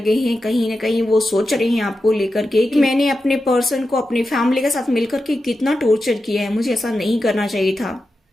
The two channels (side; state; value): both; normal; correlation 0.91